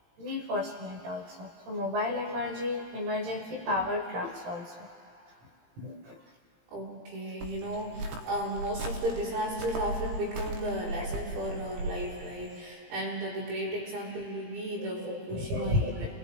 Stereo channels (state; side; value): late; left; 17 ms